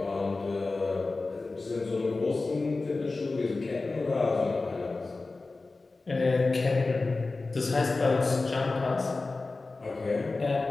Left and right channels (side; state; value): right; quieter; 3.5 dB